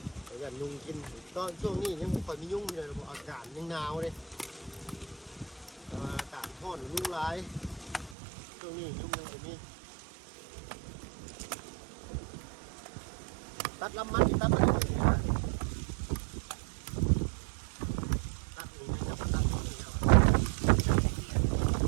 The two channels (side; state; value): left; drops out; at 8.2 s